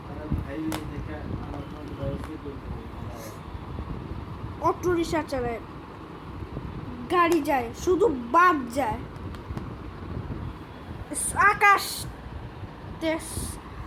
অটো রিক্সা চালায়, গাড়ি যায়, শুধু বাদ যায়। আকাশ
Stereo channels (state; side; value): identical; both; correlation 1.00